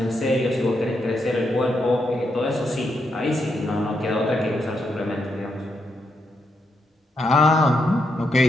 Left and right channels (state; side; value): normal; both; correlation 0.81